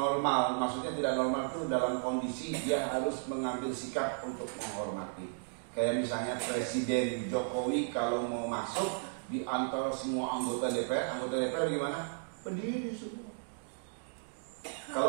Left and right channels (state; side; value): silent; left; digital silence